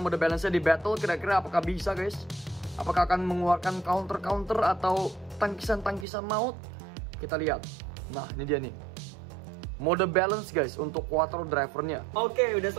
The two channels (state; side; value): drops out; left; at 6.1 s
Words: mode balance-nya di battle. Kira-kira apakah bisa guys? Apakah akan mengeluarkan counter atau tangkisan maut? Kita lihat. Nah, ini dia nih. Mode balance guys untuk Quattro drivernya. Oke, udah